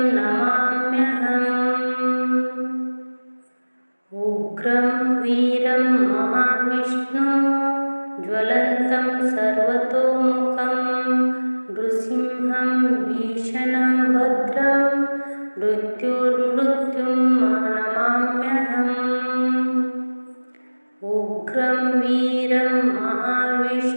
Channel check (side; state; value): both; inverted; correlation -1.00